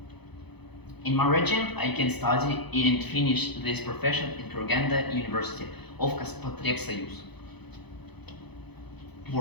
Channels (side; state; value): right; late; 0.98 ms